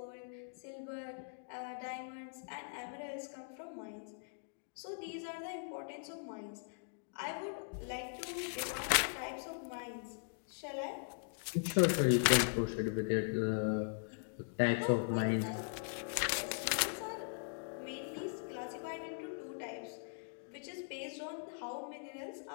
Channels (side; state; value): right; silent; digital silence